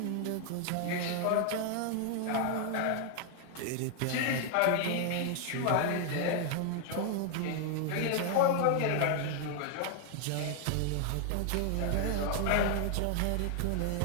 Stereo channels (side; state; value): both; different; correlation 0.00